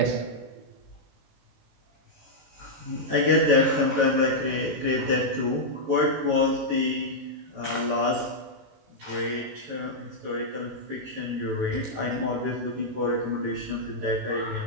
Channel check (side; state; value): left; late; 18 ms